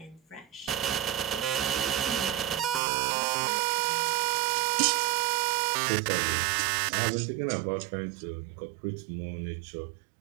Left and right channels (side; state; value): left; drops out; at 2.8 s